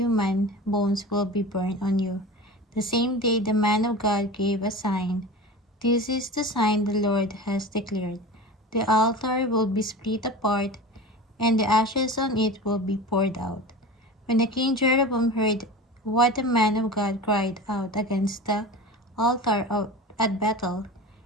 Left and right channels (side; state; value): both; normal; correlation 0.32